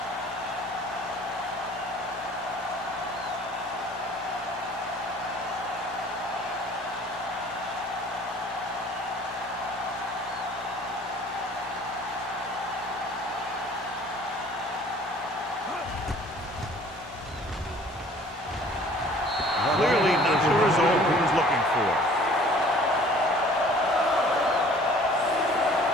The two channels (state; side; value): normal; both; correlation 0.52